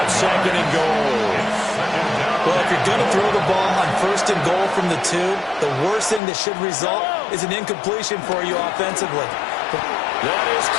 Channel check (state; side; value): drops out; right; at 6.2 s